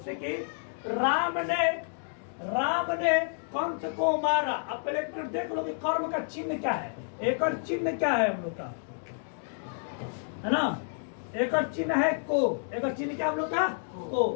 कि राम ने कंस को मारा। अब पहले एक मिनट देख लो कि कर्म का चिन्ह क्या है, एक और चिन्ह क्या है हम लोग का, है ना? एक और चिन्ह है को, एक और चिन्ह क्या हम लोग का? को।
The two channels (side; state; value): right; silent; digital silence